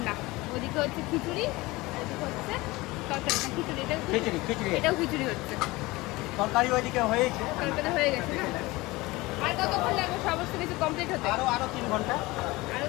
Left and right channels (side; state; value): right; quieter; 21.3 dB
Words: ওদিকে হচ্ছে খিচুড়ি, এদিকে হচ্ছে তরকারি। না, খিচুড়ি, এটাও খিচুড়ি হচ্ছে। তরকারি ওইদিকে হয়েছে, তরকারি হয়ে গেছে না? আর কতক্ষণ লাগবে সমস্ত কিছু কমপ্লিট হতে? আরো 3 ঘন্টা। আরো